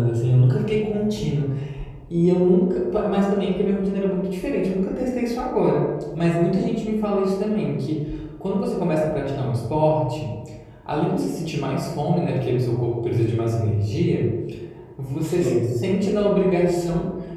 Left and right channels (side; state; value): both; identical; correlation 1.00